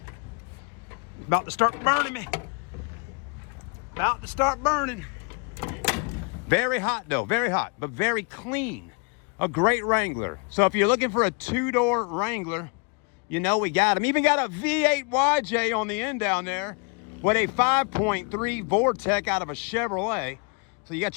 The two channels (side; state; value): right; quieter; 34.6 dB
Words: It's about to start burning me. About to start burning. Very hot, though. Very hot, but very clean. A great Wrangler. So if you're looking for a two-door Wrangler, we got them. Even got a V8 YJ on the end down there with a 5.3 Vortec out of a Chevrolet. So you